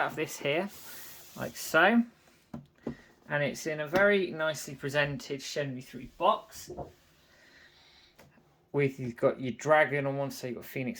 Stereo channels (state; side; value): identical; both; correlation 1.00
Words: of this here, like so. And it's in a very nicely presented Shenmue 3 box. You've got your dragon on one side, you've got